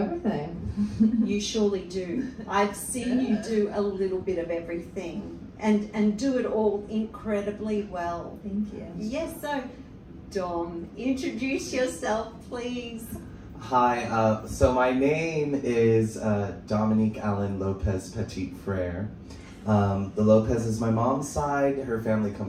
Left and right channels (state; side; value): identical; both; correlation 1.00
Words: You surely do. I've seen you do a little bit of everything and do it all incredibly well. Thank you. Yes, so Dom, introduce yourself, please. Hi, so my name is Dominique Lopez Petit Frere. The Lopez is my mom's side. Her family